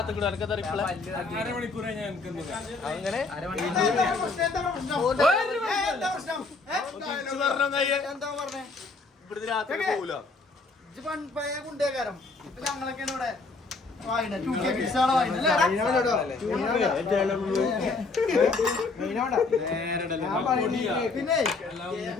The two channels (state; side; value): quieter; right; 3.8 dB